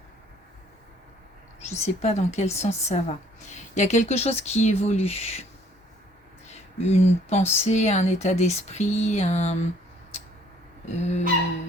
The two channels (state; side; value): normal; both; correlation 0.60